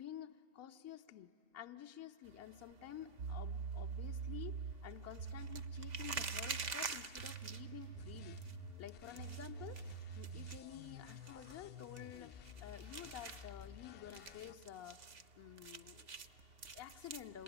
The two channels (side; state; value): left; late; 3.5 ms